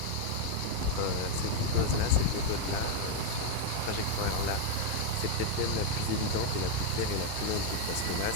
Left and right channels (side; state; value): both; different; correlation 0.01